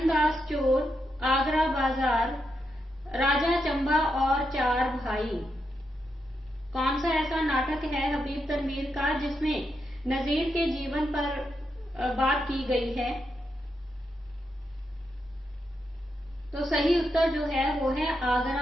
चोर, आगरा बाजार, राजा चंबा और चार भाई। कौन सा ऐसा नाटक है हबीब तनवीर का जिसमें नजीर के जीवन पर बात की गई है? तो सही उत्तर जो है वो है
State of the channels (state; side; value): normal; both; correlation 0.84